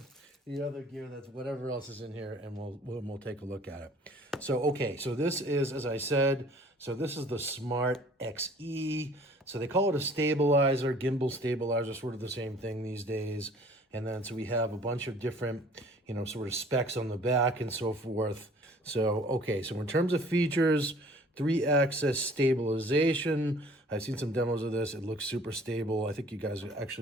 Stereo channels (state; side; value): normal; both; correlation 0.52